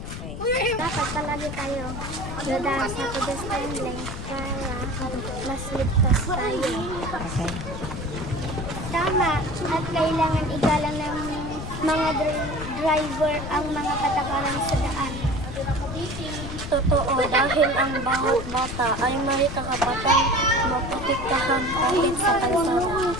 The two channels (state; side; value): noise; left; rumble, 8 dB below the sound